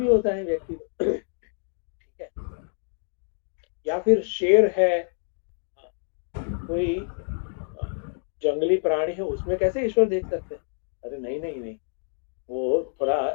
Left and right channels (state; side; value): silent; right; digital silence